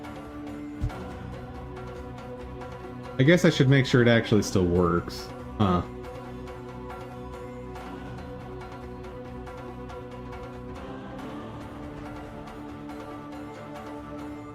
I guess I should make sure it actually still works. Huh.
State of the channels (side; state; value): both; identical; correlation 1.00